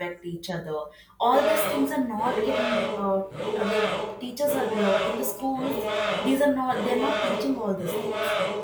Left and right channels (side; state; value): both; identical; correlation 1.00